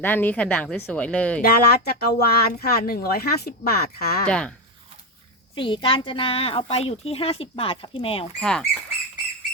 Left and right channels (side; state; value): both; normal; correlation 0.11